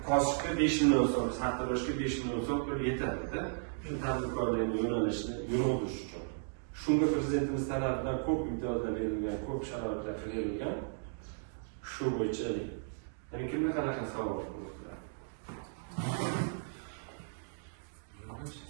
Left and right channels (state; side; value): silent; left; digital silence